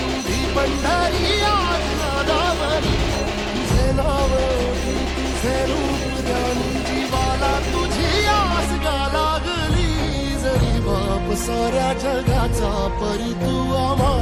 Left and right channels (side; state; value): both; identical; correlation 1.00